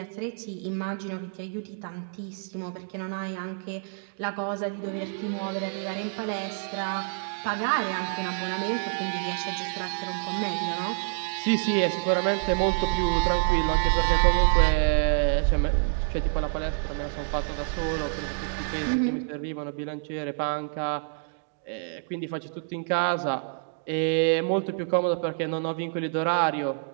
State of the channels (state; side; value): silent; left; digital silence